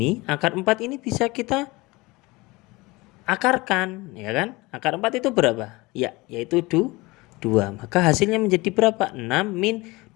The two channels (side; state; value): right; quieter; 22.7 dB